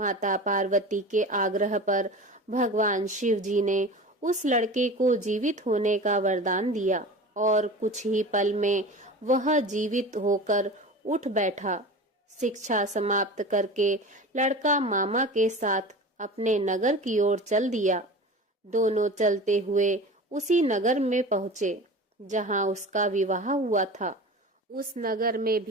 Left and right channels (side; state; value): both; normal; correlation 0.34